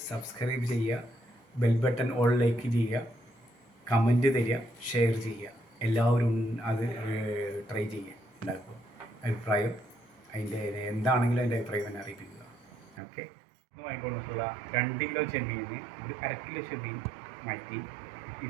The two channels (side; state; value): left; drops out; at 13.0 s